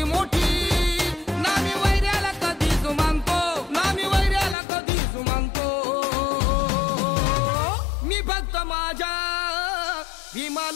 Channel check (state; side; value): drops out; right; at 4.5 s